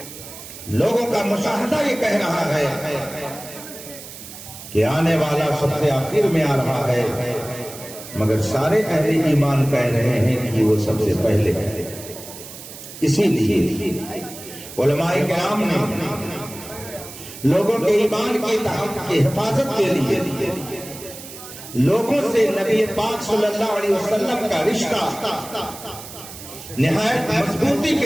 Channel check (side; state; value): right; noise; hiss, 14 dB below the sound